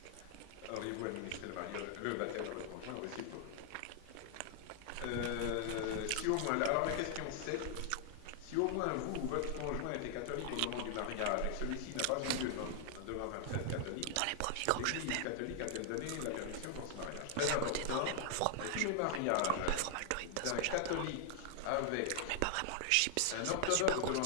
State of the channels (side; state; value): both; different; correlation 0.00